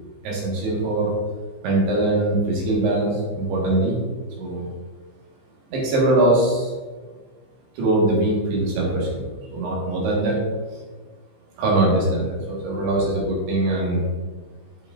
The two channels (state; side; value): late; left; 15 ms